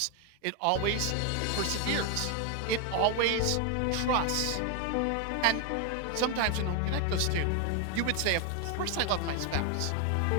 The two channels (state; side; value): different; both; correlation 0.01